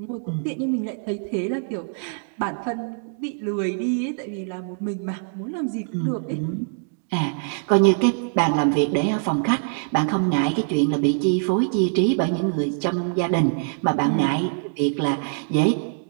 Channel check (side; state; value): left; silent; digital silence